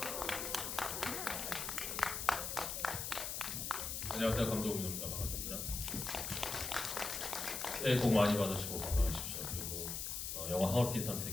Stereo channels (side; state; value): left; noise; hiss, 3 dB below the sound